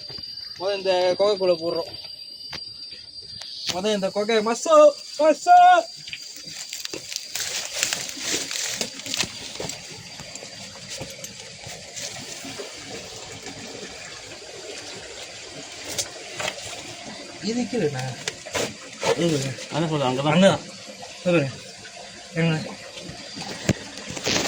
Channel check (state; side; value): identical; both; correlation 1.00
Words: முதல் இந்த கொகைக்குள்ளே போடுறோம். முதல் இந்த கொகை மசோ மசோ இது கீழேண்ணா அதான் சொல்லுங்கள் அங்கே தான் அங்கே தான் சொல்லுங்க எங்க